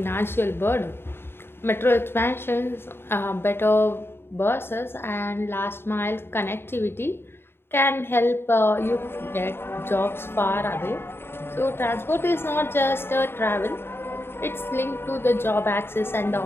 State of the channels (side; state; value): right; late; 0.11 ms